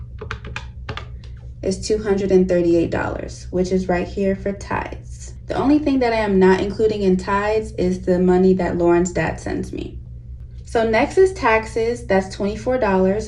is $238, which is right here for tithes. The only thing that I am not including in tithes is the money that Lauren's dad sends me. So next is taxes. That's $24,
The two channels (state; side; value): identical; both; correlation 1.00